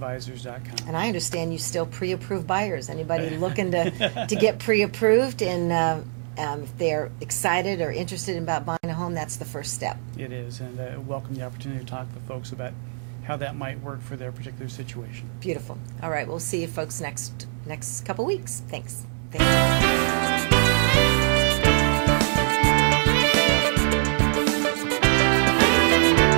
And I understand you still pre-approve buyers. Anybody looking to get pre-approved, and if they're excited or interested about buying a home, that's the first step. It is, and welcome the opportunity to talk with folks about how that might work for their particular situation. Beautiful. All right, we'll see you folks next couple weeks. Thanks. Thanks.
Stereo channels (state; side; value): silent; left; 60 dB below the other